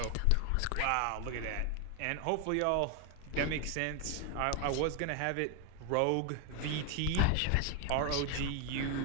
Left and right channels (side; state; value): both; different; correlation 0.01